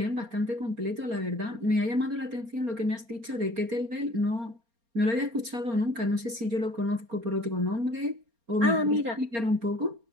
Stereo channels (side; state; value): left; late; 4.3 ms